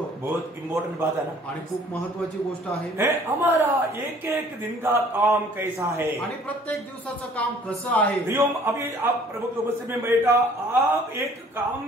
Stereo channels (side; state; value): both; normal; correlation 0.55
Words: बहुत इम्पोर्टेंट बात है ना, आणि खूप महत्वाची गोष्ट आहे। हमारा एक एक दिन का काम कैसा है, आणि प्रत्येक दिवसाचं काम कसं आहे। अभी आप प्रभु के उपस्थिति में बैठा, आप एक काम